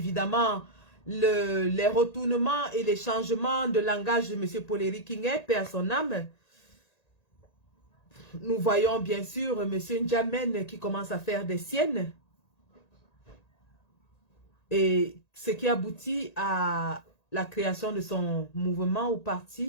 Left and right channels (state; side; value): late; right; 1.9 ms